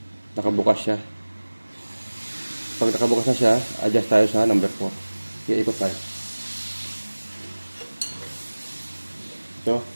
Nakabukas siya. Pag nakabukas na siya, adjust tayo sa number 4. Ikot tayo. Ito,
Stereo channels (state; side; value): inverted; both; correlation -1.00